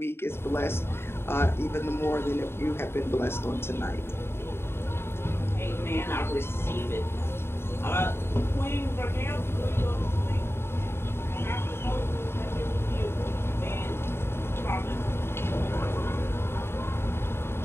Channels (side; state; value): right; late; 0.12 ms